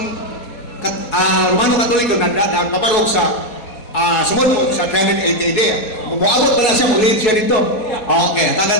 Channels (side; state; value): right; late; 4.2 ms